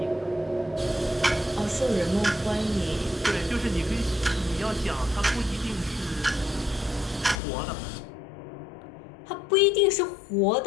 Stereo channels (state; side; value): drops out; right; at 7.4 s